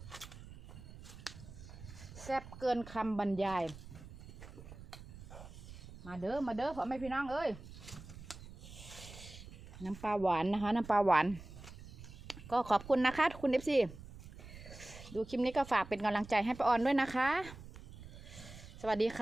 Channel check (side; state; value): right; noise; rumble, 15 dB below the sound